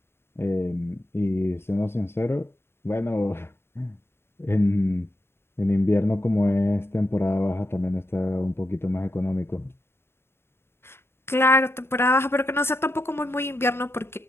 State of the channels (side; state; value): right; late; 0.12 ms